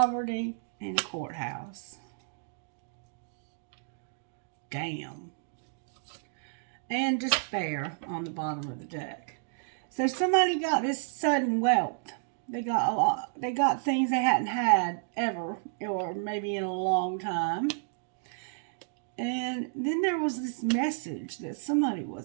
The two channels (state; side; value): silent; left; digital silence